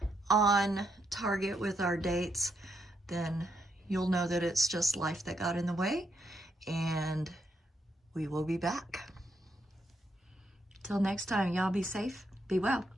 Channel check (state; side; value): normal; both; correlation 0.79